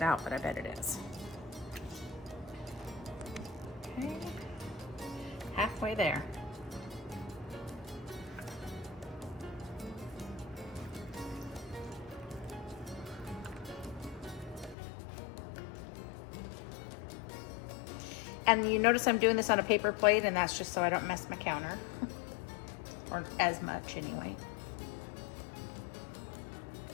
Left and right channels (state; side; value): drops out; right; at 14.8 s